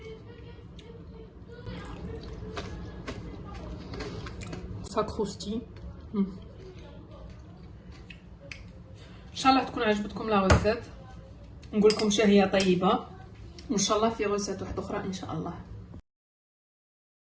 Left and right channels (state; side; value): identical; both; correlation 1.00